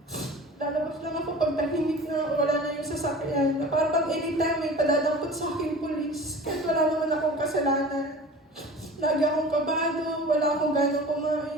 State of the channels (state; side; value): normal; both; correlation 0.39